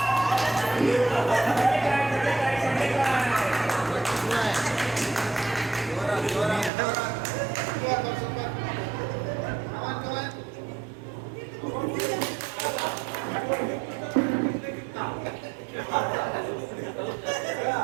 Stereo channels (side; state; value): left; drops out; at 6.7 s